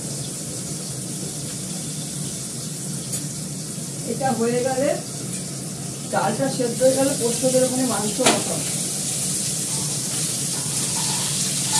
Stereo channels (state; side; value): identical; both; correlation 1.00